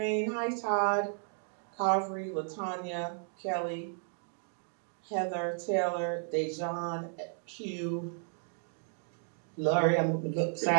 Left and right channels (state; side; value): silent; left; 55 dB below the other